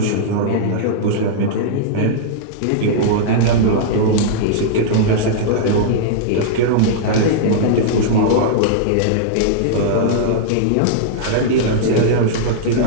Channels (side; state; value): both; different; correlation -0.02